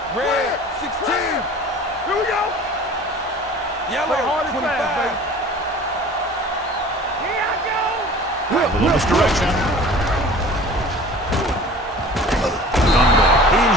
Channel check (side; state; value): both; normal; correlation 0.43